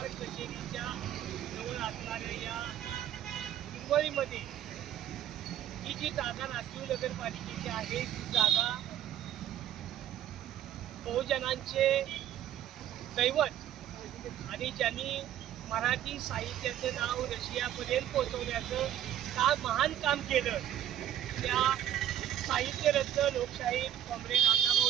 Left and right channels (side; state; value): left; quieter; 11.2 dB